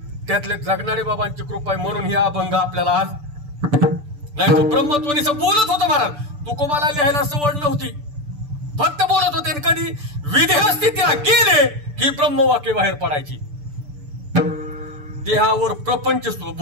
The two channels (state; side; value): late; left; 6.8 ms